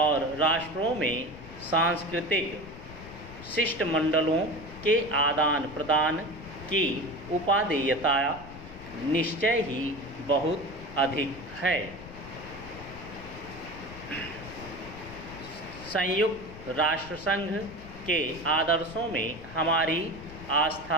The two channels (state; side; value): noise; left; rumble, 15 dB below the sound